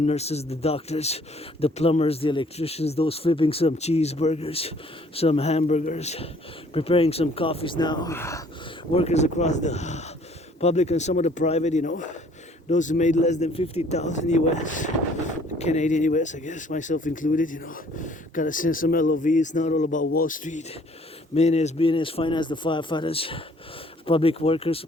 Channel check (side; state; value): both; normal; correlation 0.58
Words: the doctors, the plumbers, the electricians, those flipping some cheeseburgers, some hamburgers, preparing some coffees now, workers across the public and some of the private, you know, those who made less than 50,000 US, Canadian US, I guess, myself included, you know, gotta send some LOV. It's not all about Wall Street, millionaires, billionaires, finance, the firefighters, public workers who